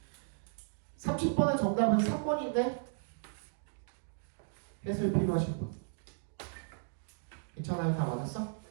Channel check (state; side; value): silent; left; digital silence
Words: 30번의 정답은 3번인데 해설 필요하신 분 괜찮아요? 다 맞았어?